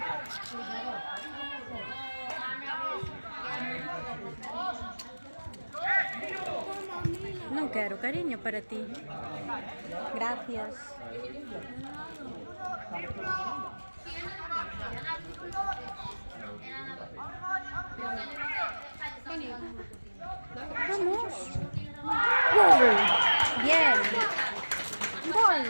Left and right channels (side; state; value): both; inverted; correlation -1.00